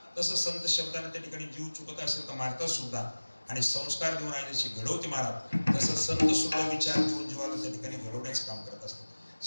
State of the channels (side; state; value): both; inverted; correlation -1.00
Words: तसं संत शब्दाने त्या ठिकाणी जीव चुकत असेल तर मारतात सुद्धा. आणि संस्कार देऊन आई जशी घडवते महाराज तसं संत सुद्धा विचार देऊन जीवाला त्या ठिकाणी घडवण्याचं काम करत असतात.